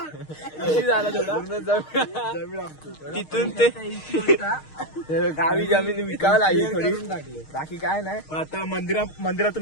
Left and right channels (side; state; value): right; late; 6.5 ms